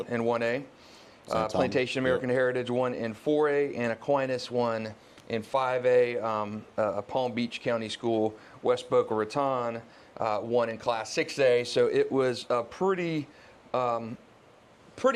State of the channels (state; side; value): identical; both; correlation 1.00